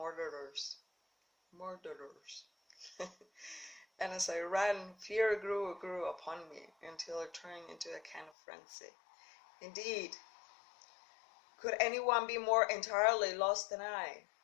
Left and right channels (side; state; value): right; drops out; at 8.3 s